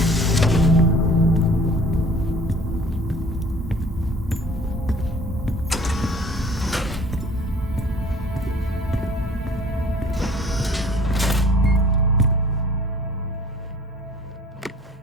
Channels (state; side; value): normal; both; correlation 0.50